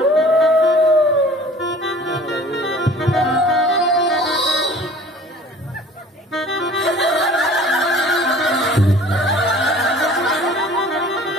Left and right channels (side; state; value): both; normal; correlation 0.47